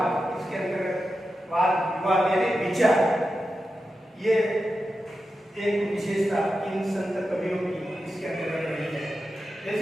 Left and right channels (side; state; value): both; normal; correlation 0.90